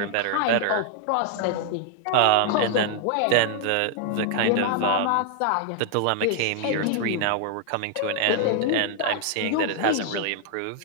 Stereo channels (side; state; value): both; different; correlation 0.00